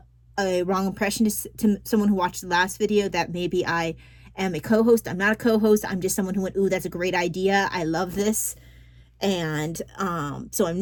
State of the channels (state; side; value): identical; both; correlation 1.00